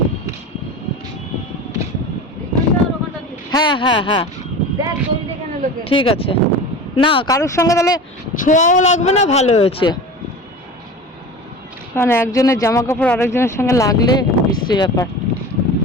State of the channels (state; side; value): normal; both; correlation 0.33